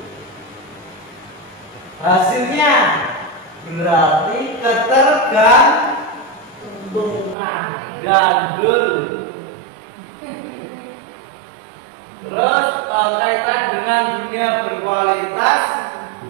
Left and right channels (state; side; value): drops out; left; at 7.4 s